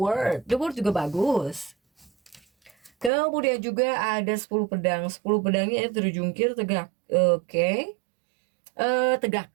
juga bagus. Kemudian juga ada 10 pedang. 10 pedangnya itu terjungkir tegak. Oke.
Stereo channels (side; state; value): left; drops out; at 3.1 s